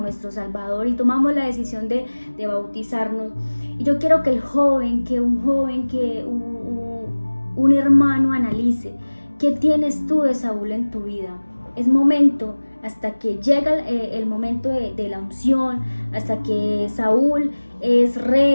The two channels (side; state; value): both; inverted; correlation -1.00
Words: Salvador y tomamos la decisión de bautizarnos. Y yo quiero que un hermano analice: ¿qué tienes tú de Saúl en tu vida? Es momento, hasta que llega el momento de la unción, hasta que Saúl es